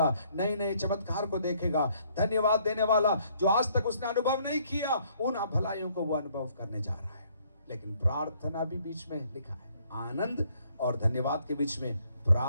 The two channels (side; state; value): both; inverted; correlation -0.66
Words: नए नए चमत्कार को देखेगा, धन्यवाद देने वाला जो आज तक उसने अनुभव नहीं किया उन भलाइयों को वो अनुभव करने जा रहा है। लेकिन प्रार्थना भी बीच में लिखा है, आनंद और धन्यवाद के बीच में